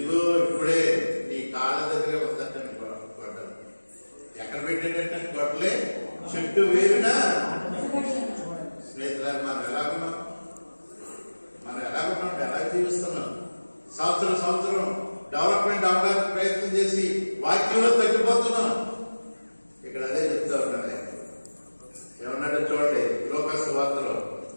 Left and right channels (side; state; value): both; inverted; correlation -1.00